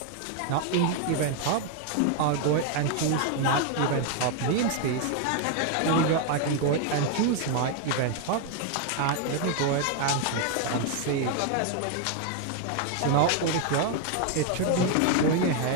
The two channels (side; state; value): both; different; correlation 0.01